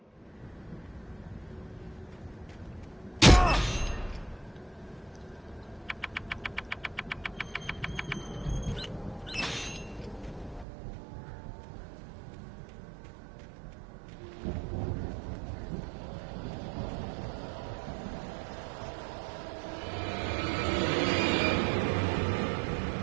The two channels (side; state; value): left; drops out; at 10.7 s